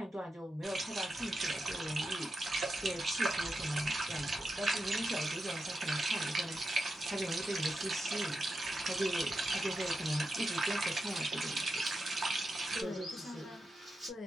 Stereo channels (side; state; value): both; normal; correlation 0.88